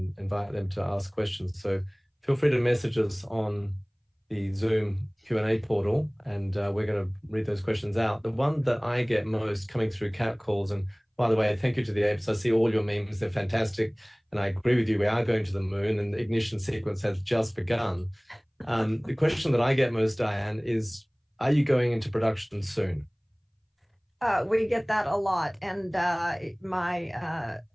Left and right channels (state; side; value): identical; both; correlation 1.00